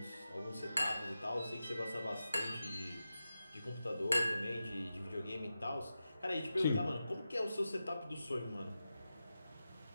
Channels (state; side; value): inverted; both; correlation -0.91